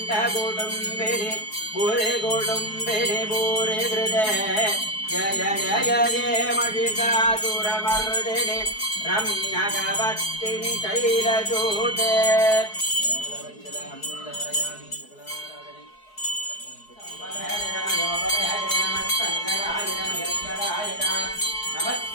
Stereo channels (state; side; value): late; right; 4.7 ms